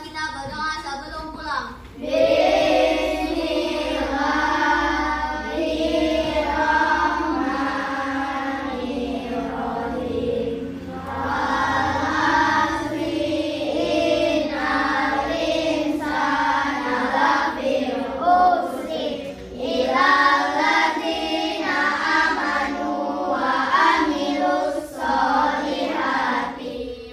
berdoa sebelum pulang.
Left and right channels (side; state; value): both; identical; correlation 1.00